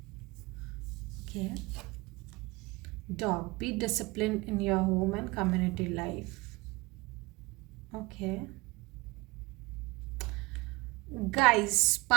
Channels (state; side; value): quieter; left; 23.8 dB